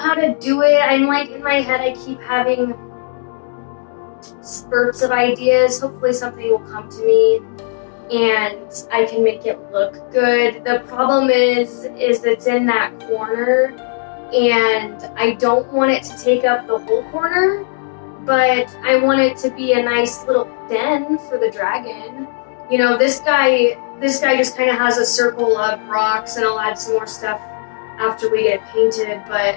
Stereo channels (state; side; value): silent; right; 68 dB below the other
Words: to do it. I'm like, in my head, I keep having spurts of ideas. Hopefully something will come to me and I can make it look good. The problem is it's in that corner and I don't want it to take up the whole corner, but I want it to be a nice little den for the dragon. You know, this guy just kind of has a circle of rocks, and I'll add some more stuff after we get it painted, but